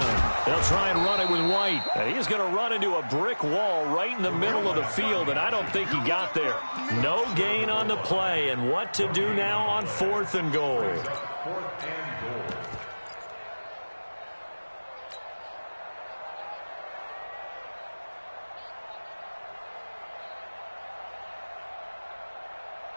try and run it with White. And he's going to run into a brick wall right in the middle of the field, and I don't think he got there. No gain on the play, and what to do now on 4th and goal. 4th and goal.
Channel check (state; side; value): inverted; both; correlation -1.00